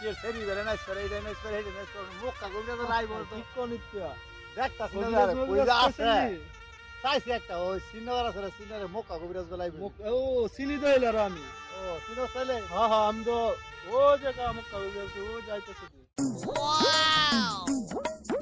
সেরি বেড়ে নাইস করে, এইটা নাইস করে, এইটা নাইস করে, মুখ কাগজে তো নাই বলতো। দেখতাছি না রে, কইরা আছে চাইছি একটা ওই সিনিয়র আছে রে, সিনিয়রের মুখ কাগজ বেলাই। ও চিনি তো এলার আমি। ও সিনিয়র ছেলে? হ্যাঁ হ্যাঁ, আমি তো ও জায়গা মুখ কাগজ ও যাইতেছে।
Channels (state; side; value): identical; both; correlation 1.00